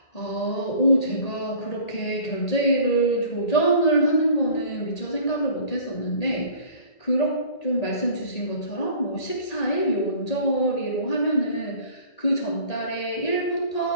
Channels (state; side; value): late; right; 1.8 ms